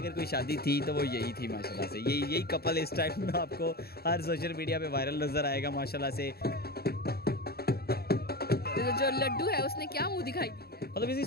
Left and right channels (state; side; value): late; right; 0.46 ms